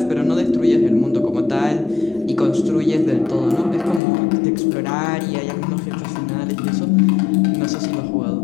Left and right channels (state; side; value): drops out; right; at 4.0 s